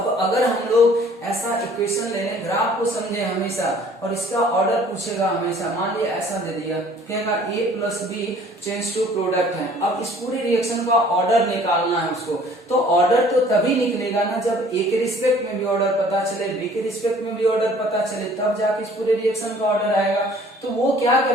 अगर हम लोग ऐसा इक्वेशन ले लें, ग्राफ को समझे हमेशा और इसका ऑर्डर पूछेगा हमेशा, मान लिया ऐसा दे दिया, कहेगा a plus B change to product है। अब इस पूरी रिएक्शन का ऑर्डर निकालना है उसको, तो ऑर्डर तो तभी निकलेगा ना जब a के रिस्पेक्ट में भी ऑर्डर पता चले, b के रिस्पेक्ट में भी ऑर्डर पता चले, तब जाके इस पूरे रिएक्शन का ऑर्डर आएगा। तो वो क्या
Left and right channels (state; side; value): normal; both; correlation 0.54